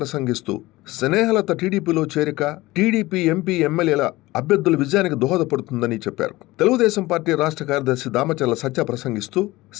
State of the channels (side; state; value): right; quieter; 19.4 dB